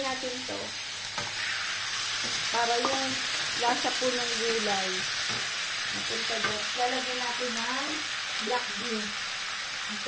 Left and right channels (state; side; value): identical; both; correlation 1.00